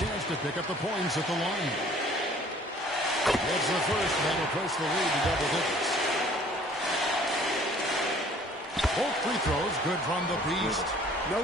to pick up the points at the line. That's the first. That'll push the lead to double digits. Both free throws good from the Beast. No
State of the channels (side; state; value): both; normal; correlation 0.54